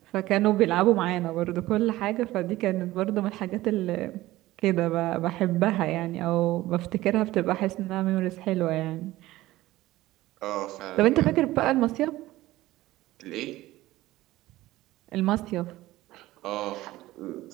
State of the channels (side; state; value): left; quieter; 16.9 dB